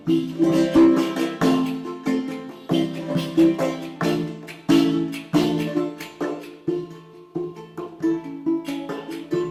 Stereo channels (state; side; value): identical; both; correlation 1.00